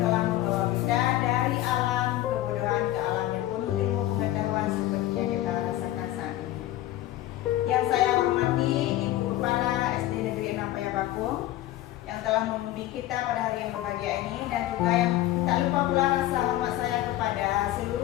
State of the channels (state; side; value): quieter; right; 14.7 dB